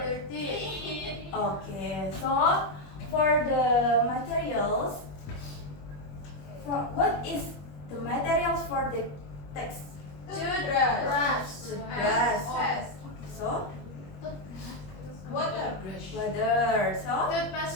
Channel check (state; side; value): late; right; 21 ms